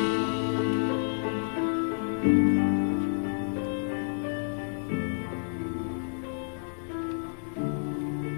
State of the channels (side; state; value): right; silent; digital silence